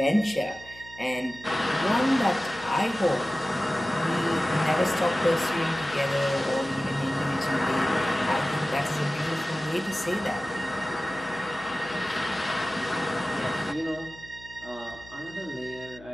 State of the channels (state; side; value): noise; left; hum, 21 dB below the sound